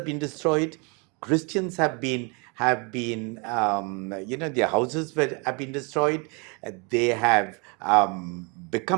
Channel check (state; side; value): quieter; left; 32.4 dB